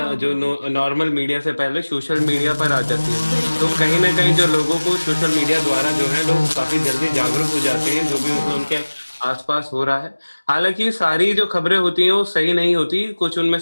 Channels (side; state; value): both; inverted; correlation -1.00